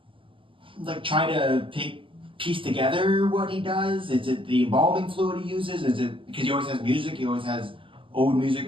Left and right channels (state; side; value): late; left; 0.25 ms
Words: try to piece together what he does. Is it the embalming fluid he uses? Is it because he always has music? He always has old